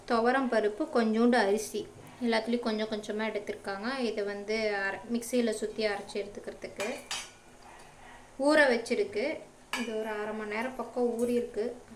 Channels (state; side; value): identical; both; correlation 1.00